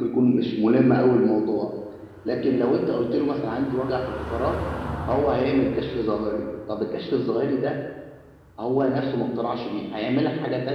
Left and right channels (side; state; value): both; identical; correlation 1.00